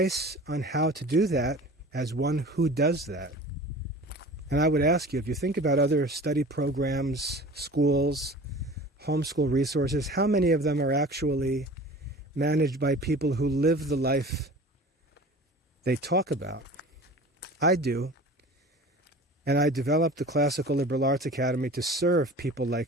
on how to do that, as one who does that, and I would ask you, if you think about other study programs, schools, homeschool resources, how many of them are actually managed by people who live the life they talk about? I do. And I developed the Classical Liberal Arts Academy to serve people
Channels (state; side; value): normal; both; correlation 0.40